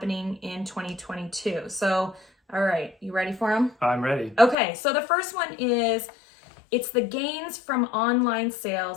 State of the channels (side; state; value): right; drops out; at 4.5 s